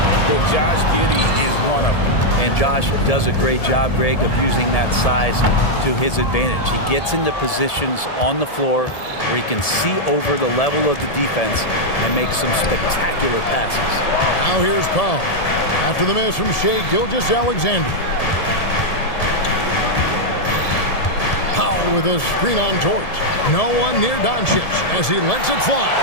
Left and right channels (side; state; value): right; late; 1.7 ms